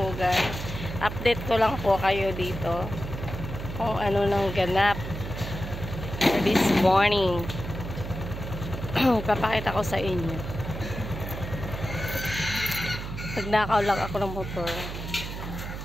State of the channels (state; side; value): noise; right; hum, 7 dB below the sound